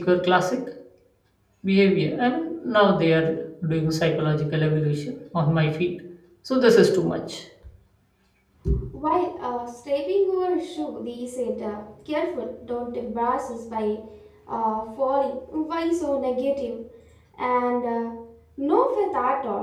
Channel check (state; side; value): identical; both; correlation 1.00